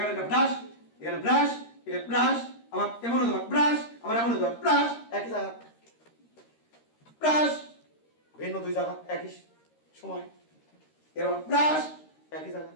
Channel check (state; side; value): late; right; 13 ms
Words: একটা ব্রাশ, এখানে ব্রাশ, এখানে ব্রাশ, আবার এমন হতে পারে ব্রাশ, আবার এমন হতে পারে ব্রাশ, একই জায়গা ব্রাশ, ভিন্ন দুই জায়গা একই সময়, এরকম ব্রাশ একই জায়গা,